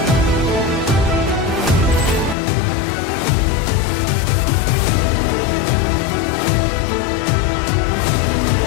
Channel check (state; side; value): drops out; right; at 2.4 s